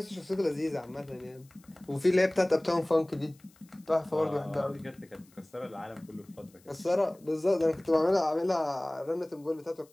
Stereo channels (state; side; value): noise; left; hiss, 30 dB below the sound